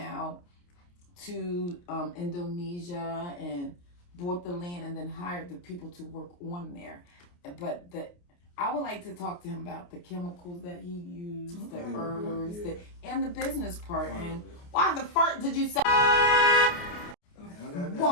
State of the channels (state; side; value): late; right; 28 ms